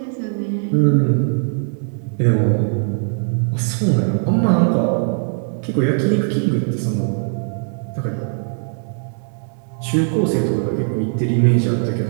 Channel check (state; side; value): silent; left; 60 dB below the other